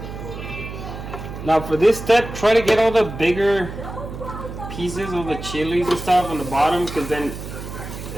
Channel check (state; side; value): noise; right; hum, 10 dB below the sound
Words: Now for this step, try to get all the bigger pieces of the chilies and stuff on the bottom, because then